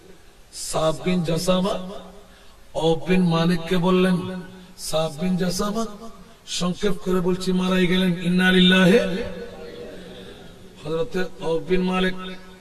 সাফ বিন জাসামা আউফ বিন মালিককে বললেন, সাফ বিন জাসামা সংক্ষেপ করে বলছি মারাই গেলেন, ইন্না লিল্লাহি। হযরত আউফ বিন মালিক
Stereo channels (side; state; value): both; identical; correlation 1.00